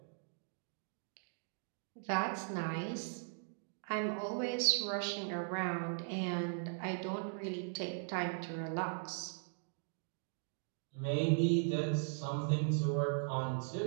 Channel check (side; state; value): left; silent; digital silence